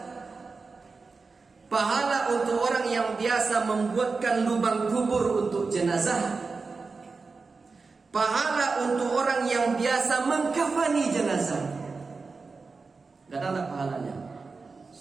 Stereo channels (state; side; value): quieter; left; 4.3 dB